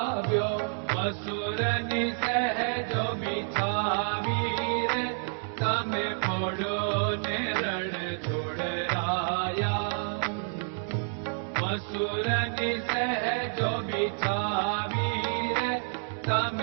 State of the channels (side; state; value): left; silent; 59 dB below the other